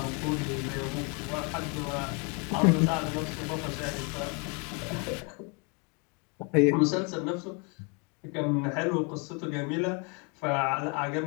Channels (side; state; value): right; quieter; 33.5 dB